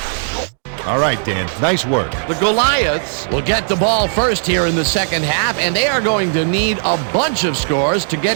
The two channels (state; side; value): silent; left; digital silence